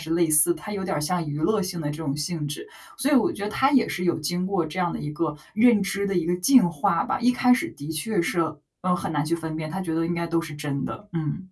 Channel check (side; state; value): both; identical; correlation 1.00